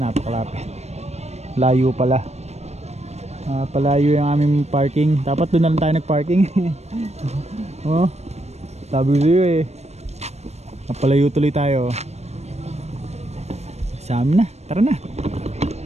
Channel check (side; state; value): left; late; 0.31 ms